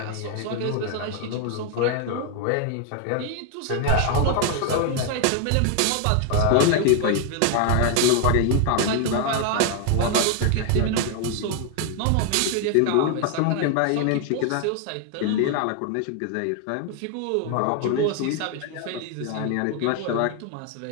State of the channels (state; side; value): different; both; correlation 0.00